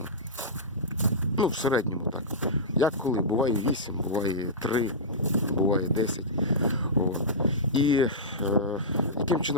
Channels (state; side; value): normal; both; correlation -0.15